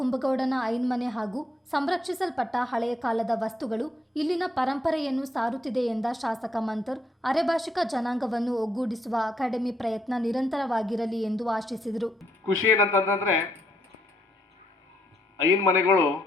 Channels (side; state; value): both; normal; correlation 0.74